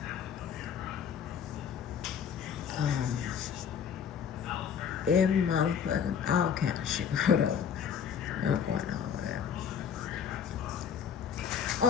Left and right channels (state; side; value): quieter; right; 7.5 dB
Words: every motherfucking, all kind of shit, whatever. No point in all that.